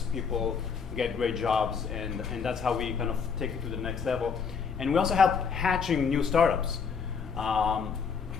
people get great jobs, and that's how we kind of take it to the next level. And we also help hatching new startups.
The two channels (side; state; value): right; quieter; 6.0 dB